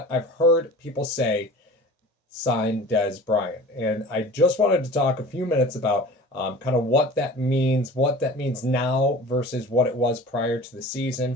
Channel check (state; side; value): normal; both; correlation 0.40